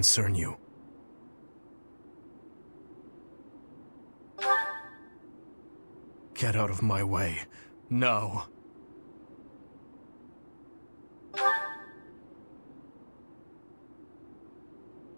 you. Get out of my way. No.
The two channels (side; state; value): both; inverted; correlation -1.00